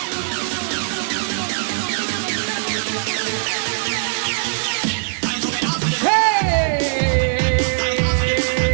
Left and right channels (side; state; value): left; silent; digital silence